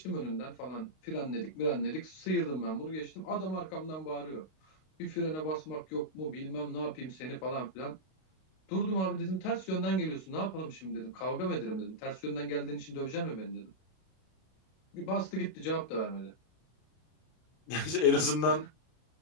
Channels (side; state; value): right; late; 32 ms